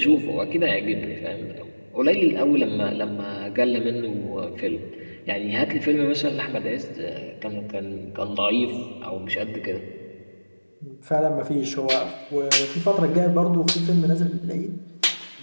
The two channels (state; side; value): inverted; both; correlation -1.00